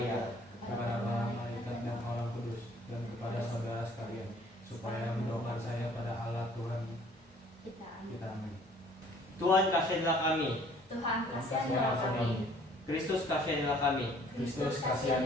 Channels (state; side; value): normal; both; correlation 0.56